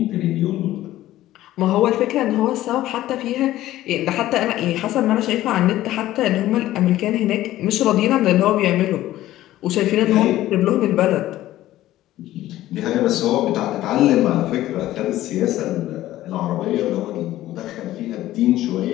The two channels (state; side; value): quieter; right; 14.7 dB